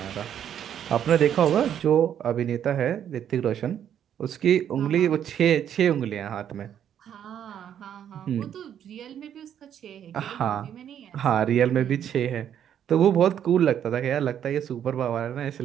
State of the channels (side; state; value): left; quieter; 9.6 dB